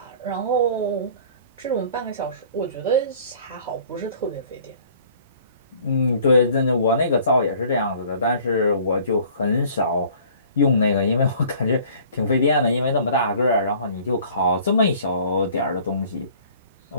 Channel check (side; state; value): both; inverted; correlation -0.52